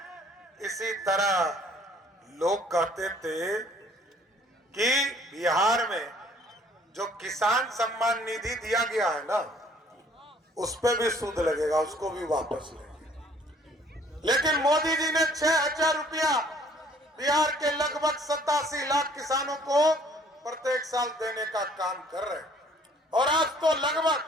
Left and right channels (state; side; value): normal; both; correlation 0.58